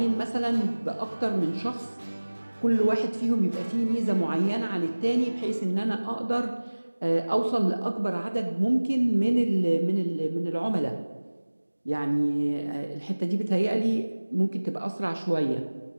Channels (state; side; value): inverted; both; correlation -1.00